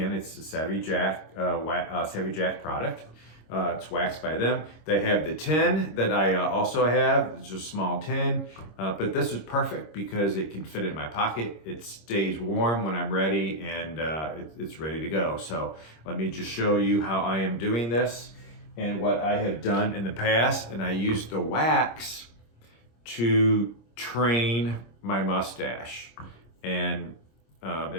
it's a SavvyJack product. It's waxed by them. They have the tin that I also have. It's just a small tin, but this is perfect because it can fit in my pocket. It stays warm when I'm ready, and it's ready to go. So let me just show you how I am doing this and what I have done in the past. And I use the wax to train my mustache, and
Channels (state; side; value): late; right; 26 ms